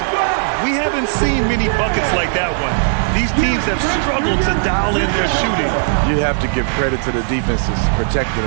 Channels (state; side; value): silent; left; digital silence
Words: We haven't seen many buckets like that one. These teams have struggled to dial in their shooting. You have to give credit to the defenses. Protecting